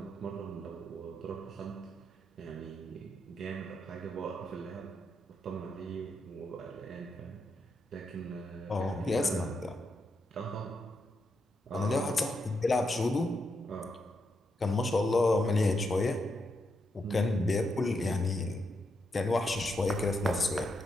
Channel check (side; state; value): both; normal; correlation 0.82